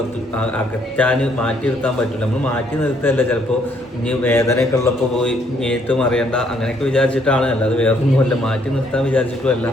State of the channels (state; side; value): normal; both; correlation 0.68